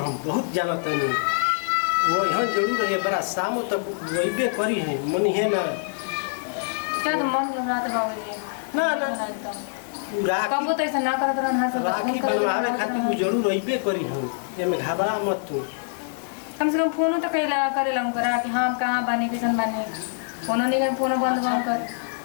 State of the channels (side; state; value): right; silent; digital silence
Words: बहुत जानते नहीं। वो यहाँ जरूर है बड़ा शाम तक वही करी है मनी है ना। क्या तो मन घबरा था बाबूजी ना ना कब तो ऐसा ना करत रहना सब राखी बनवावे खातिर वो जरूर अइबे करी हम। ये में घबरा मत तू। कम से कम फोन तो कइला करेला करा कि हां कहां बानी किसन बानी। फोन नहीं फोन बंद बंद कर।